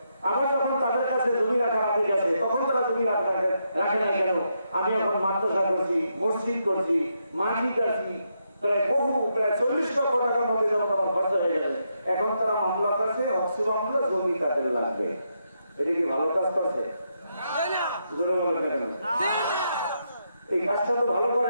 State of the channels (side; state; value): both; inverted; correlation -0.81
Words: আমার যখন তাদের কাছে জমি রাখার আগে গেছে তখন তারা জমি রাখে নাই কেন? আমি এখন মাদ্রাসা করছি, মসজিদ করছি, মাটি কাটছি, প্রায় 40 লক্ষ টাকার মধ্যে যখন আমার খরচা হয়ে গেছে, এখন তারা মামলা করছে, অক্সি মামলা, জমি তাদের লাগবে। এটা কি ভালো কাজ করছে? এই কাজটা তো ভালো